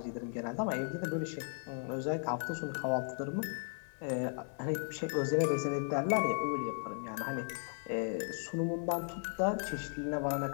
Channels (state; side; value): silent; right; 54 dB below the other